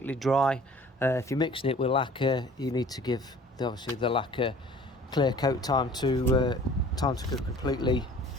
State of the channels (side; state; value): both; normal; correlation 0.49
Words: dry. If you're mixing it with lacquer, you need to give obviously the lacquer clear coat time to go completely